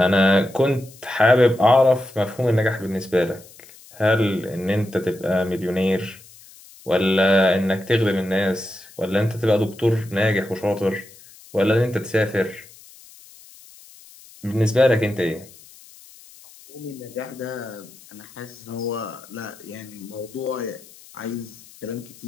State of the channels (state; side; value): noise; left; hiss, 22 dB below the sound